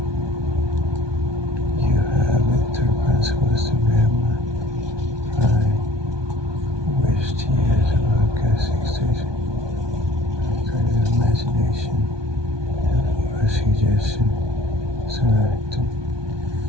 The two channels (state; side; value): late; left; 1.2 ms